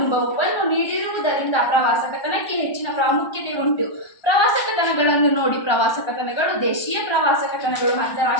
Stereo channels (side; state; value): right; late; 1.2 ms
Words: ನೀಡಿರುವುದರಿಂದ ಪ್ರವಾಸ ಕಥನಕ್ಕೆ ಹೆಚ್ಚಿನ ಪ್ರಾಮುಖ್ಯತೆ ಉಂಟು. ಪ್ರವಾಸ ಕಥನಗಳನ್ನು ನೋಡಿ. ಪ್ರವಾಸ ಕಥನಗಳು ದೇಶೀಯ ಪ್ರವಾಸ ಕಥನಗಳು,